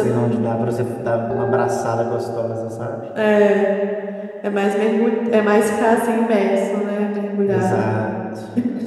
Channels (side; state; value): both; identical; correlation 1.00